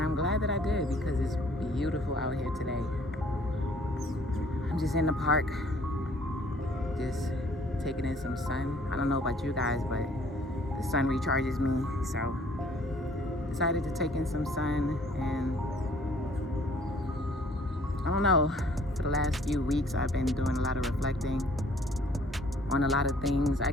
I'm glad that I did because it's beautiful out here today. I'm just in the park, just taking in some sun. I don't know about you guys, but the sun recharges me, so decided to take in some sun. And I don't know, for the last few weeks I've been doing a lot of reflecting on a lot of things. I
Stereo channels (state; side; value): normal; both; correlation 0.58